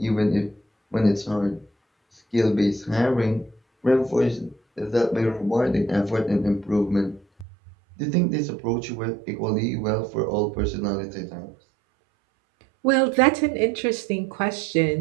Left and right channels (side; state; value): left; drops out; at 7.5 s